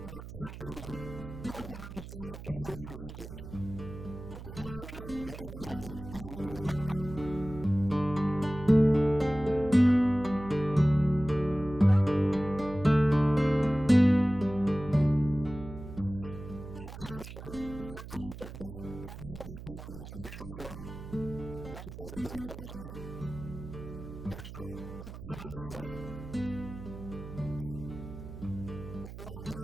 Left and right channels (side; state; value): right; noise; hum, 12 dB below the sound